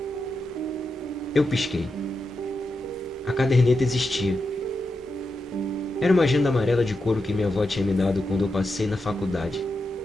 Eu pisquei. A caderneta existia. Era uma agenda amarela de couro que minha avó tinha me dado quando eu passei na faculdade,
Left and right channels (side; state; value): both; normal; correlation 0.87